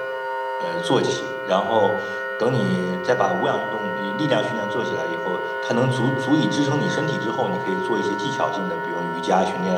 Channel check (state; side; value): identical; both; correlation 1.00